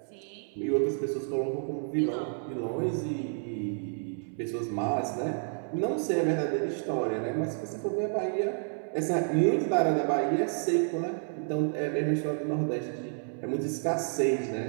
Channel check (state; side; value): silent; left; 58 dB below the other